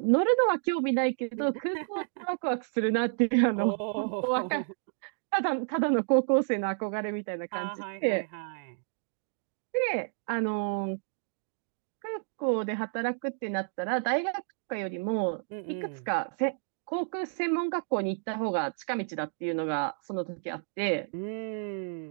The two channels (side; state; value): left; silent; digital silence